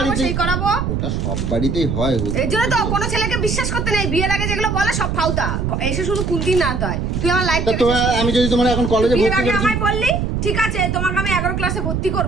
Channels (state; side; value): noise; right; rumble, 1 dB below the sound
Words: সেই করাবো। ওটা সব বাড়িতেই হয়। এই জন্য তো কোনো ছেলেকে বিশ্বাস করতে নেই, বিয়ের আগে যেগুলো বলে সব ফাউতা, এসে শুধু কুন্তি না দেয়। তুই আমার লাইফ তা তোমার, আমি যদি তোমার এখন কলেজে বিয়ের ভর্তি আগে করছি, আমায় বললি ঠিক আছে, তোমাকে আমি 11 ক্লাসে ভর্তি